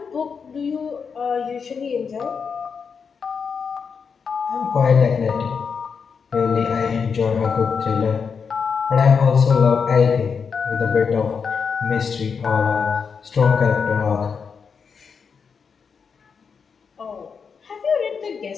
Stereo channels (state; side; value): quieter; right; 5.9 dB